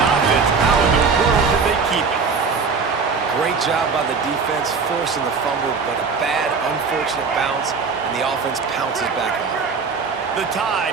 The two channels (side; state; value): left; quieter; 5.1 dB